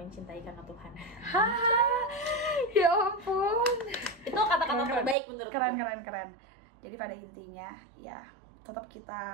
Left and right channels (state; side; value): drops out; left; at 5.2 s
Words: karena Tuhan. Ya ampun. Itu kata-kata terbaik menurut gue. Keren. Jadi pada intinya ya tetap